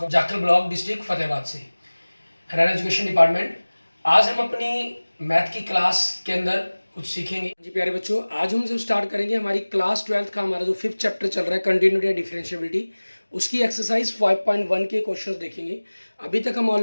Jakhal block, district Fatehabad से, हरियाणा एजुकेशन डिपार्टमेंट। आज हम अपनी मैथ की क्लास के अंदर कुछ सीखेंगे। जी प्यारे बच्चों, आज हम जो स्टार्ट करेंगे हमारी क्लास 12th का हमारा जो 5th चैप्टर चल रहा है कंटिन्यूटी एंड डिफरेंशिएबिलिटी, उसकी एक्सरसाइज 5.1 के क्वेश्चंस देखेंगे। अभी तक हम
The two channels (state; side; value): inverted; both; correlation -1.00